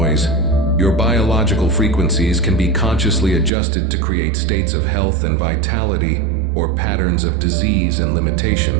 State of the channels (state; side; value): drops out; left; at 3.5 s